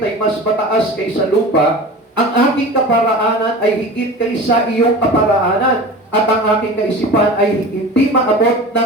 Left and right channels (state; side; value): normal; both; correlation 0.35